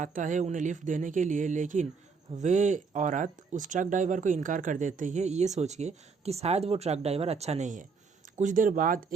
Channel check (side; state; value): left; quieter; 5.1 dB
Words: है उन्हें लिफ्ट देने के लिए, लेकिन वे औरत उस ट्रक ड्राइवर को इनकार कर देती है, ये सोच के कि शायद वो ट्रक ड्राइवर अच्छा नहीं है। कुछ देर बाद